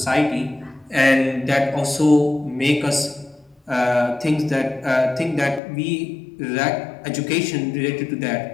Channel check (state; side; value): drops out; right; at 5.6 s